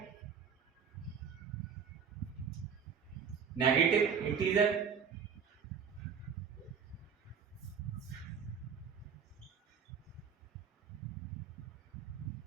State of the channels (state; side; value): quieter; left; 6.7 dB